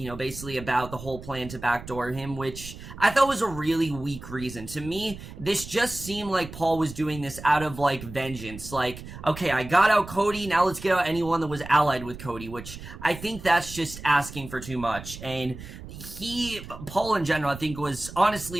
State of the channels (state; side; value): noise; right; rumble, 13 dB below the sound